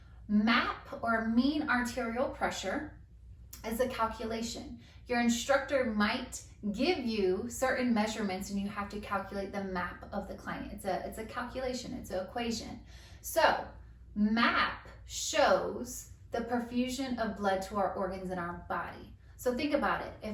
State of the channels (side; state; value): both; identical; correlation 1.00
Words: MAP or mean arterial pressure is a calculation. Your instructor might give you certain measurements and you have to calculate the MAP of the client. It's a calculation, it's an equation. So MAP shows the perfusion of blood to our organs in our body. So think about it.